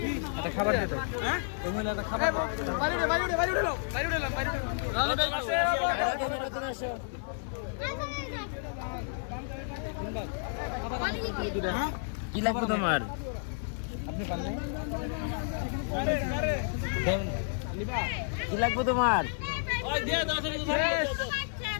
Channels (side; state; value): right; silent; digital silence